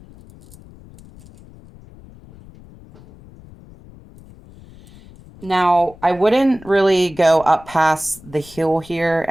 Now, I wouldn't really go up past the heel here,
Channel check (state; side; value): noise; left; rumble, 22 dB below the sound